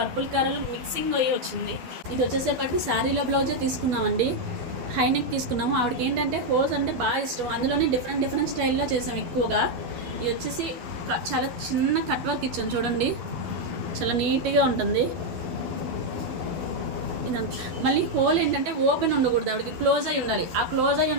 colour mixing అయ్యి వచ్చింది. ఇది వచ్చేసేపటికి శారీలో బ్లౌజే తీసుకున్నామండి, హైనెక్ తీసుకున్నాము. ఆవిడకి ఏంటంటే హోల్స్ అంటే బాగా ఇష్టం, అందులోనే డిఫరెంట్ స్టైల్లో చేసాం ఎక్కువగా. ఇది వచ్చేసి చాలా చిన్న కట్ వర్క్ ఇచ్చాం చూడండి, చాలా నీట్గా ఉంటుంది ఇదంతా. మళ్ళీ హోల్ ఏంటంటే ఓపెన్ ఉండకూడదు, ఆవిడకి క్లోజ్ అయి ఉండాలి. ఆ క్లోజ్ అయి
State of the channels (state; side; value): late; left; 12 ms